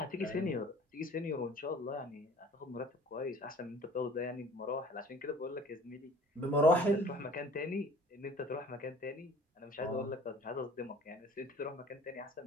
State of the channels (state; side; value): normal; both; correlation 0.49